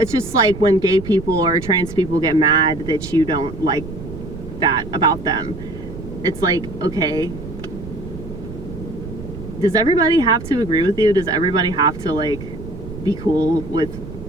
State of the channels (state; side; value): noise; right; rumble, 11 dB below the sound